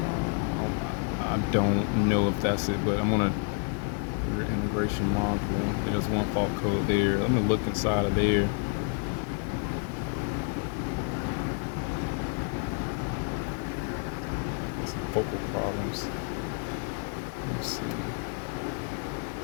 I don't know if that's it, but I'm gonna rear integration module. There's one fault code there. Let me look inside of there. Some focal problems. Let's see.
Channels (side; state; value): right; quieter; 38.5 dB